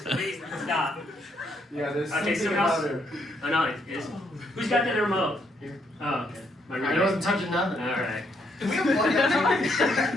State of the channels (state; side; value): normal; both; correlation 0.73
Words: Please stop. Yeah, there's Okay, something someone about else. her. Oh no, it's who's got the remote? Oh, okay. My I remote. wasn't touching nothing. All right.